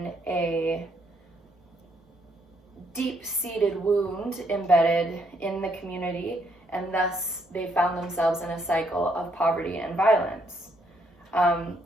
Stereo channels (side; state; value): both; normal; correlation 0.72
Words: a deep-seated wound embedded in the community, and thus they found themselves in a cycle of poverty and violence.